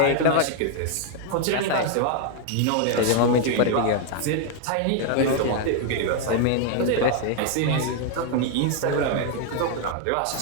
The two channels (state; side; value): different; both; correlation 0.00